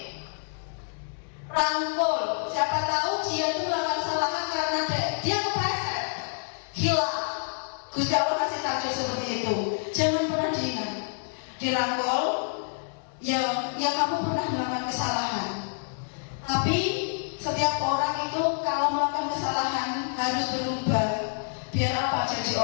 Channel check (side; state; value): right; silent; digital silence